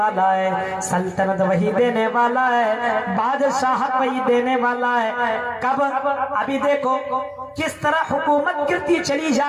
ہے، سلطنت وہی دینے والا ہے، بادشاہت وہی دینے والا ہے۔ کب؟ ابھی دیکھو کس طرح حکومت گرتی چلی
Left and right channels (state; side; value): identical; both; correlation 1.00